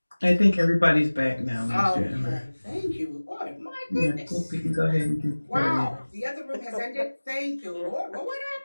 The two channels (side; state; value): both; inverted; correlation -1.00